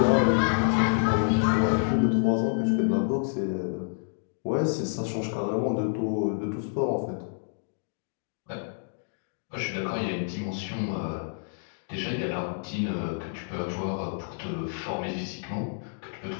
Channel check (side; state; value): right; silent; digital silence